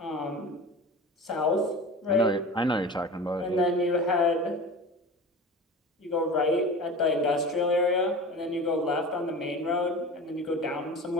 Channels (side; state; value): both; normal; correlation 0.34